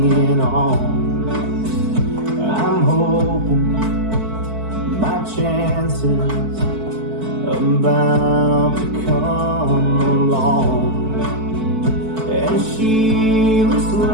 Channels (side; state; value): left; late; 4.5 ms